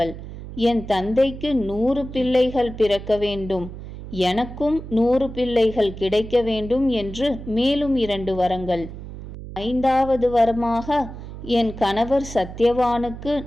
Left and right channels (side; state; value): right; noise; hum, 12 dB below the sound